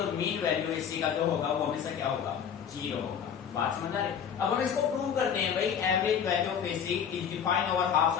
मीन वैल्यू एसी का जो होगा वो हमेशा क्या होगा, 0 होगा। बात समझ आ रही? अब हम इसको प्रूव करते हैं भाई, average value of AC is defined over half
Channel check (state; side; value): quieter; right; 7.9 dB